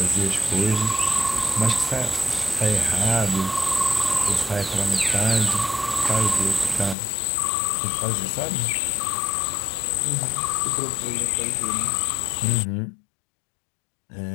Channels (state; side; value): drops out; right; at 7.0 s